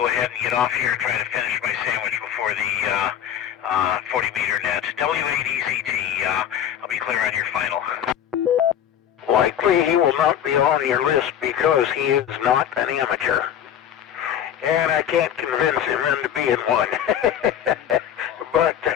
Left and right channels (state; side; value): quieter; right; 9.8 dB